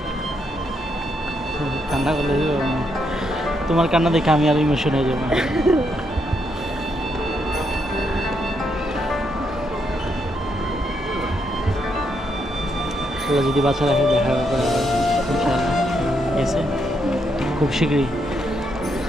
কান্না করলে তোমার কান্না দেখে আমি আর ইমোশন হয়ে যাবো। আল্লাহ যদি বাচ্চা রাখে দেখা হবে ইনশাআল্লাহ, ঠিক আছে? খুব শীঘ্রই,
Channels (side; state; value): both; normal; correlation 0.78